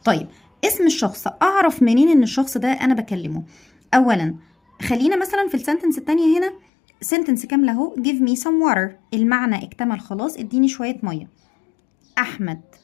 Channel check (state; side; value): drops out; right; at 6.6 s